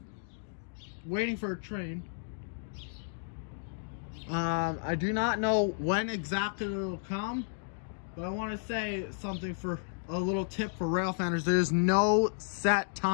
waiting for a train. I do not know when exactly it'll come, but I want to say something for a little tip for rail fanners. There's no set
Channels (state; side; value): silent; right; digital silence